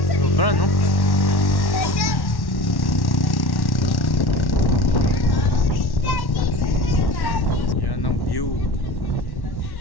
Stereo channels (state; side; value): late; right; 1.1 ms